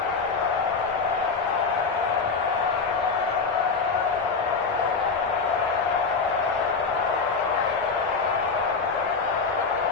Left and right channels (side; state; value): right; quieter; 4.8 dB